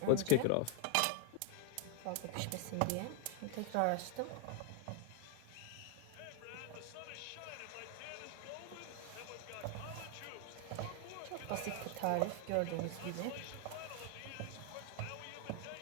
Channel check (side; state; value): both; different; correlation 0.00